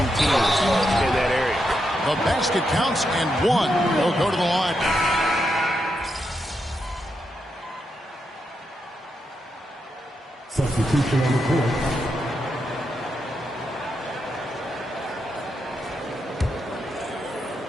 teams in that area. The basket counts, and 1 will go to the line. Substitution on the court.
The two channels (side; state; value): both; normal; correlation 0.84